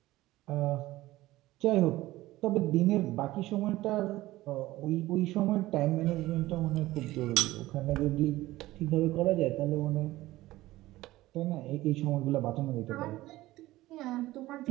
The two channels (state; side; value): quieter; left; 17.1 dB